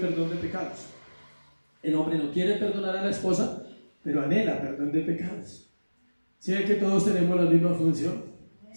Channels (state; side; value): inverted; both; correlation -1.00